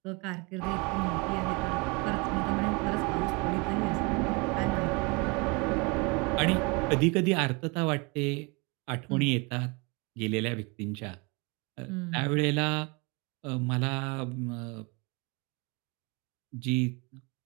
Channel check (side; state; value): left; quieter; 28.9 dB